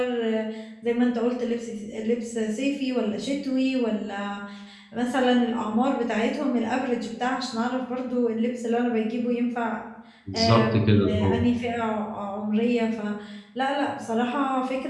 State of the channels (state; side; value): identical; both; correlation 1.00